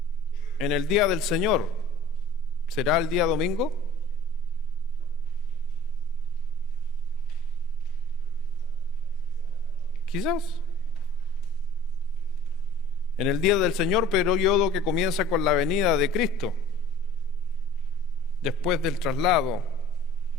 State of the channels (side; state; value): both; normal; correlation 0.48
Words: En el día del Señor, ¿será el día domingo? Quizás. En el día del Señor, periodo que comienza con la venida de Cristo, después del traslado,